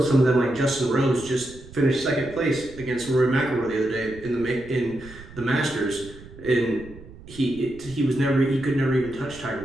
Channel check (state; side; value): noise; right; rumble, 18 dB below the sound